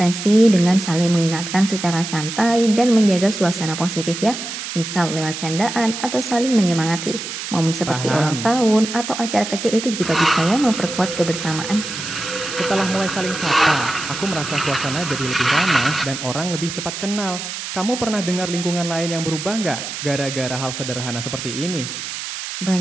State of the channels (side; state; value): right; noise; hiss, 7 dB below the sound